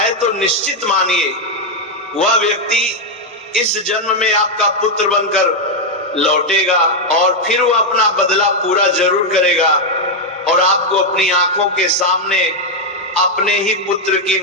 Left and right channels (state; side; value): normal; both; correlation 0.01